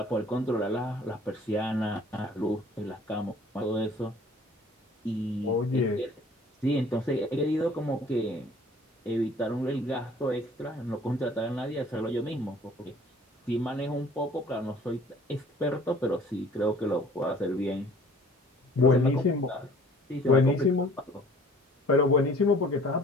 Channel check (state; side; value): normal; both; correlation 0.52